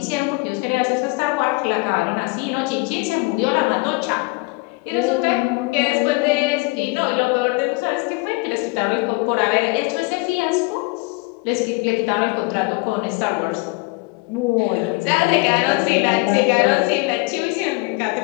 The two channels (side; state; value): right; quieter; 26.7 dB